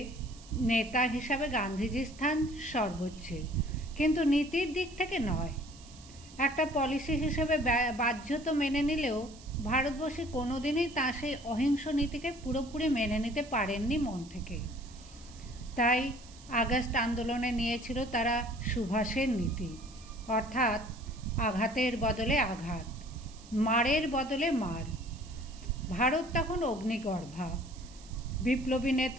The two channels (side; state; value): right; noise; hiss, 21 dB below the sound